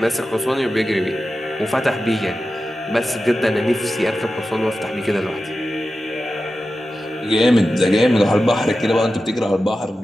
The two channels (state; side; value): normal; both; correlation 0.93